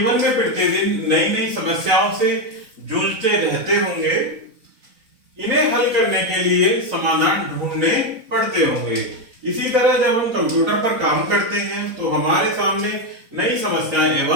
में प्रतिदिन नई नई समस्याओं से जूझते रहते होंगे। इन्हें हल करने के लिए समाधान ढूंढने पड़ते होंगे। इसी तरह जब हम कंप्यूटर पर काम करते हैं तो हमारे सामने नई समस्याएं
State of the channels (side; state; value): left; late; 3.9 ms